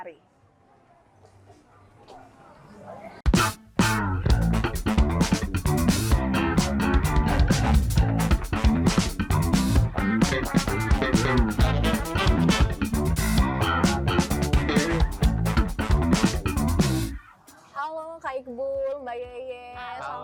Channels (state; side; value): identical; both; correlation 1.00